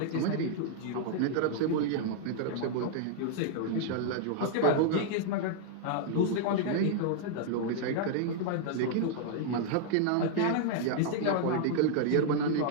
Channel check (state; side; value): different; both; correlation -0.01